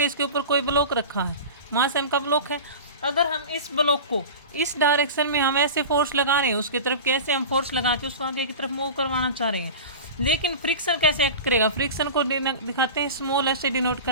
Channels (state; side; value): inverted; both; correlation -0.32